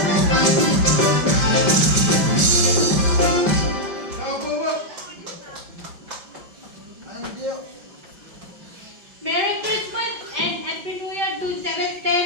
Merry Christmas and Happy New Year to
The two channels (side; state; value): left; late; 5.1 ms